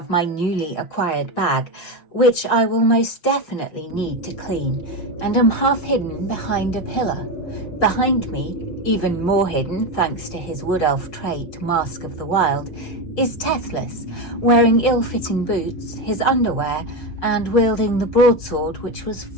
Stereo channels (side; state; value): right; late; 6.0 ms